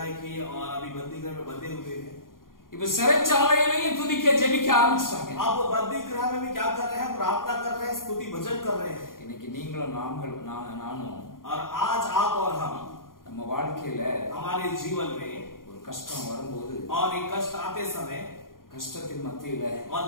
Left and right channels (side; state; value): right; late; 0.91 ms